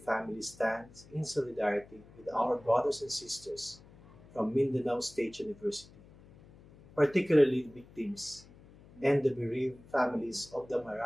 family stands in solidarity with our brothers and sisters from Mindanao State University, particularly the victims and the bereaved families of the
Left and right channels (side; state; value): left; noise; hum, 23 dB below the sound